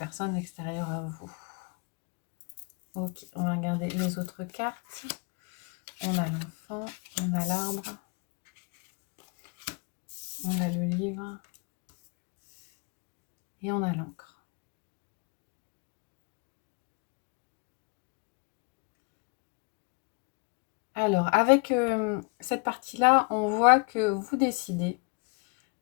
extérieure à vous. Ok, on va regarder les autres cartes. On a l'enfant, on a l'arbre, on a le livre et on a l'encre. Alors, avec cette partie-là, on voit que vous décidez,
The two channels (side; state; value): right; quieter; 31.7 dB